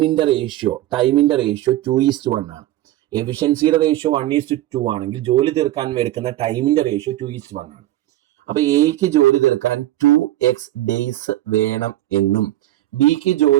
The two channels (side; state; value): left; quieter; 14.9 dB